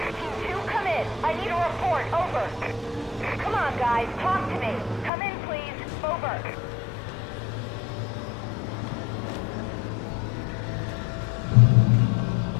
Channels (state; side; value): drops out; right; at 5.1 s